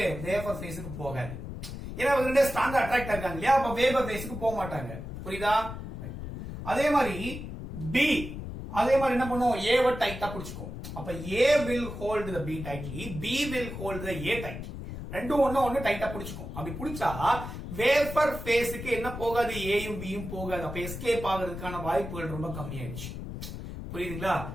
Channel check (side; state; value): left; noise; rumble, 8 dB below the sound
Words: வேப்பர் ஃபேஸ்க்கு போகாது. ஏன்னா இவங்க ரெண்டே ஸ்ட்ராங்கா அட்ராக்ட் ஆகாங்க இல்லையா? அப்ப வேப்பர் ஃபேஸ்க்கு போக மாட்டாங்க. புரியுதா? அதே மாதிரி B அதே மாதிரி என்ன பண்ணும்? A வ டைட்டா பிடிச்சுக்கும். அப்ப A will hold the B tightly, B will hold the A tightly. ரெண்டும் ஒண்ணு டைட்டா பிடிச்சுக்கும். அப்படி பிடிச்சா வேப்பர் ஃபேஸ்க்கு என்ன போகாது? ஏயும் பியும் போகாது. அப்ப எஸ்கேப் ஆகிறதுக்கான வாய்ப்புகள் ரொம்ப கம்மியாயிடுச்சு. புரியுதுங்களா?